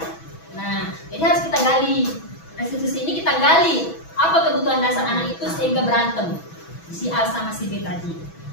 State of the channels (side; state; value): right; late; 6.1 ms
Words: Nah, jadi harus kita gali. Restitusi ini kita gali apa kebutuhan dasar anak itu sehingga berantem si A sama si B tadi.